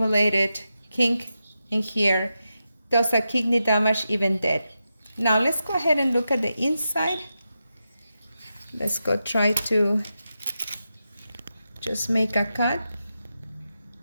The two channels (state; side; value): inverted; both; correlation -0.89